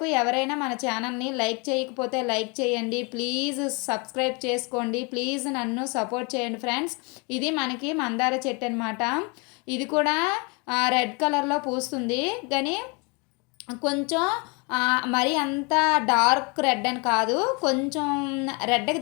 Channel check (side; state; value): right; quieter; 30.4 dB